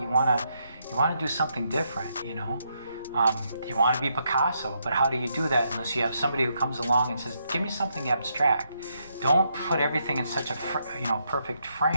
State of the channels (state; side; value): inverted; both; correlation -0.78